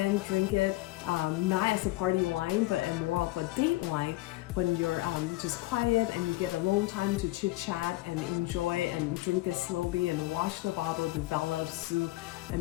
drink it not as a party wine, but more of a date wine when you're just quiet and you get alone time to chit chat and enjoy and drink it slowly and watch the bottle develop through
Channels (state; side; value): quieter; right; 19.4 dB